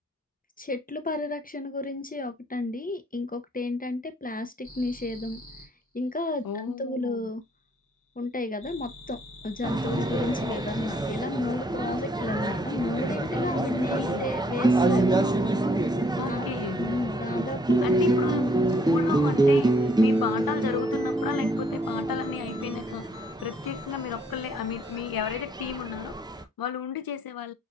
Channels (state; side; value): normal; both; correlation 0.66